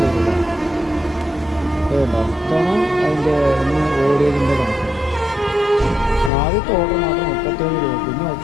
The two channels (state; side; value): drops out; right; at 6.3 s